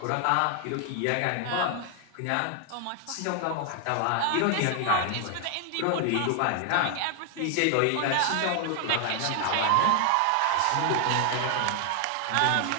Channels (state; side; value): different; both; correlation 0.00